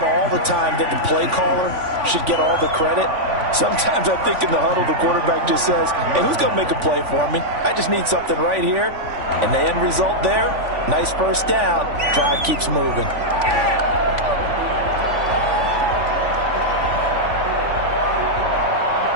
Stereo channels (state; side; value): late; left; 3.5 ms